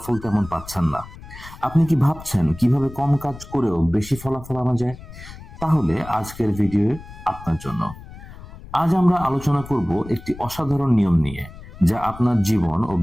তেমন পাচ্ছেন না? আপনি কি ভাবছেন কিভাবে কম কাজ করেও বেশি ফলাফল আনা যায়? তাহলে আজকের ভিডিও আপনার জন্য। আজ আমরা আলোচনা করব একটি অসাধারণ নিয়ম নিয়ে, যা আপনার জীবন ও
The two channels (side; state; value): left; noise; rumble, 16 dB below the sound